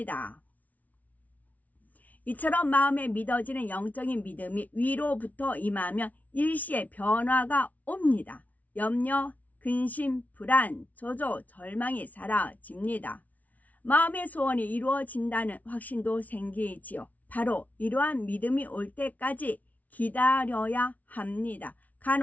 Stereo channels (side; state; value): right; late; 0.073 ms